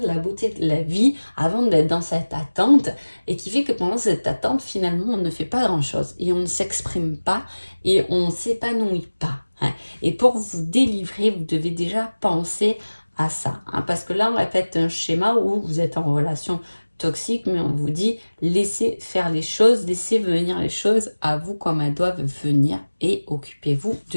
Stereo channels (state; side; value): inverted; both; correlation -1.00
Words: la beauté de la vie, avant d'être dans cette attente, et qui fait que pendant cette attente, finalement, on ne fait pas grand-chose, et on ne s'exprime pas, et on ne s'épanouit pas. Hein. Et pour vous délivrer, vous devez déjà penser à ça, hein, parce que là, on répète un schéma où vous êtes en relation toxique, mais on vous dit, laissez faire les choses, laissez venir les choses à vous comme elles doivent venir, et occupez-vous